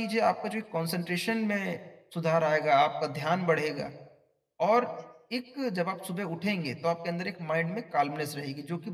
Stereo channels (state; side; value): identical; both; correlation 1.00